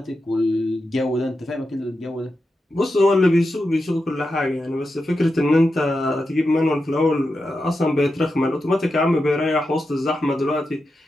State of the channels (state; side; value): normal; both; correlation 0.89